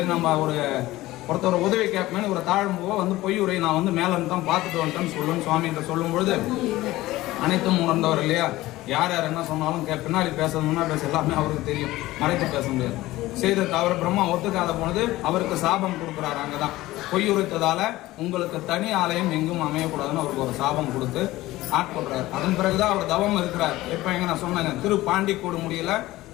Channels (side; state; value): right; quieter; 17.4 dB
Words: நம்ம ஒருத்தர் உதவி கேட்பேன்னு ஒரு தாழ்ம்புவ பொய் உரை நான் மேல இருந்து தான் பார்த்துட்டு வந்துட்டேன்னு சொல்லுன்னு சுவாமி கிட்ட சொல்லும் பொழுது அனைத்தும் உணர்ந்தவர் இல்லையா, யார் என்ன சொன்னாலும் பின்னாடி பேச முன்னாடி பேச எல்லாமே அவருக்கு தெரியும், மறைத்து பேச முடியாது. செய்தது அவர் பிரம்மா ஒத்துக்காத போனது அவருக்கு சாபம் கொடுக்குறாரு. அங்கதான் பொய் உரைத்ததால உங்களுக்கு தனி ஆலயம் எங்கும் அமையக்கூடாதுன்னு அவருக்கு ஒரு சாபம் கொடுத்து ஆட்கொள்றாரு. அதன் பிறகுதான் அவர் தவம் இருக்கிறார். எப்ப நான் சொன்னேங்க திரு பாண்டி கொடுமுடியில